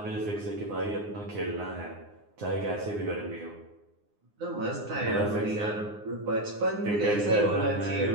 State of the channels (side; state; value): left; late; 9.7 ms